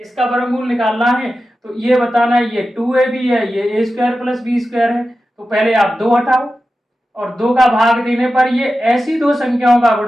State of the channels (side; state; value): both; normal; correlation 0.93